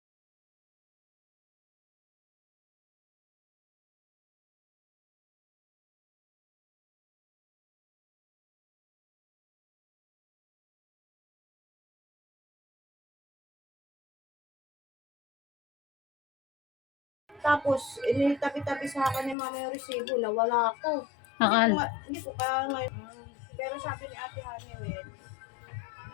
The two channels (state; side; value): drops out; right; at 19.4 s